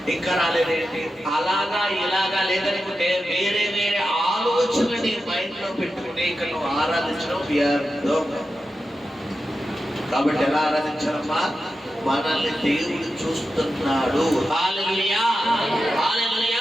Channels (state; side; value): normal; both; correlation 0.91